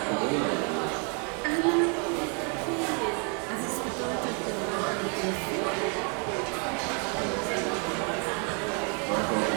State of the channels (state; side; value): quieter; left; 37.4 dB